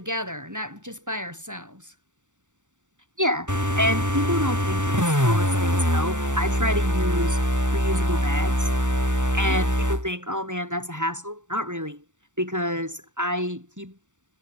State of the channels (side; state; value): left; late; 0.86 ms